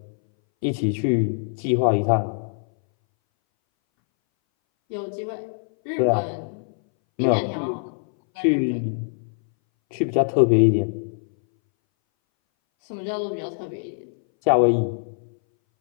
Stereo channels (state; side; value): silent; right; 61 dB below the other